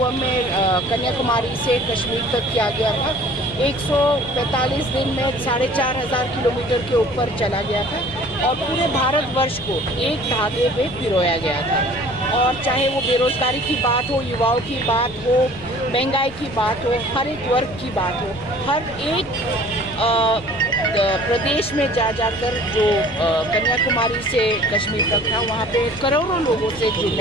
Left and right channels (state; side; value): noise; left; rumble, 18 dB below the sound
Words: में कन्याकुमारी से कश्मीर तक किया गया था। 145 दिन में 4,500 किलोमीटर के ऊपर चला गया था और पूरे भारतवर्ष को एक धागे में पिरोया गया था। और चाहे वो बेरोजगारी की बात हो, युवाओं की बात हो, महंगाई की बात हो, हर एक वर्ग की बात हो, हर एक प्रदेश में जाकर जो कन्याकुमारी से कश्मीर तक था वहाँ पे करोड़ों लोगों से